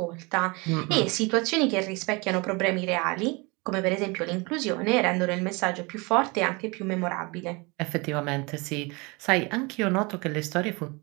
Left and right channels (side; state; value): left; quieter; 27.3 dB